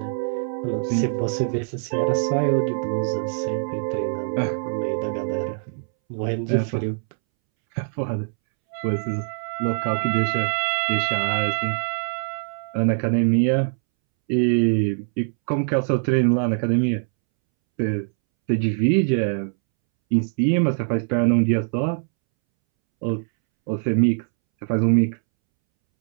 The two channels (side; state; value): left; silent; 63 dB below the other